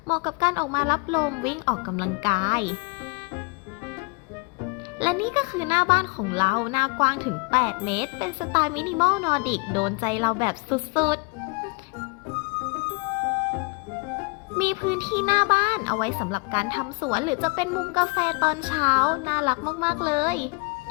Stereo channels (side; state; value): right; quieter; 30.3 dB